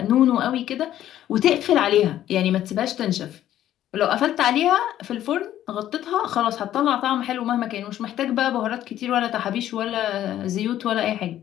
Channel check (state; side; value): quieter; right; 12.2 dB